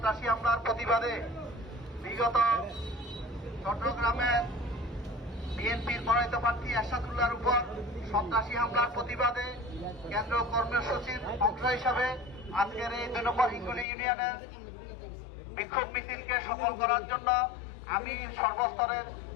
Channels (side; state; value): right; drops out; at 13.9 s